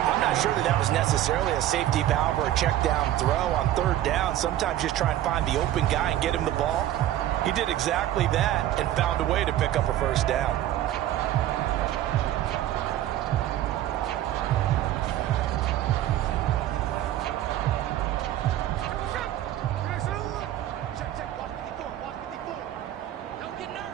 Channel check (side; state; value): left; quieter; 13.0 dB